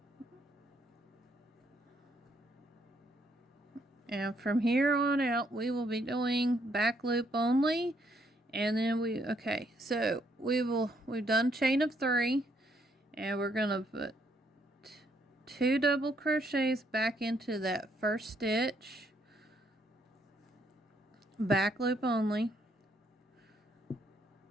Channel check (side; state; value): both; normal; correlation 0.71